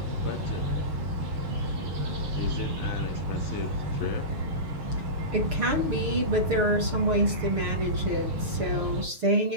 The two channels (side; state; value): left; late; 6.6 ms